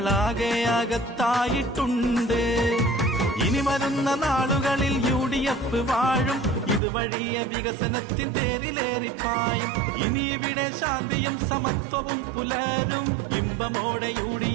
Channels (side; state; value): left; drops out; at 6.8 s